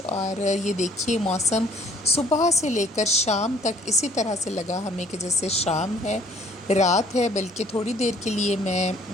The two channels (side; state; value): both; normal; correlation 0.59